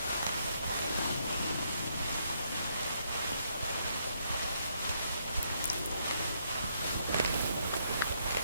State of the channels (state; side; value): inverted; both; correlation -0.74